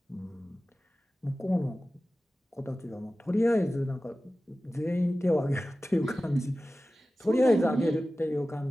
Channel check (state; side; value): normal; both; correlation 0.95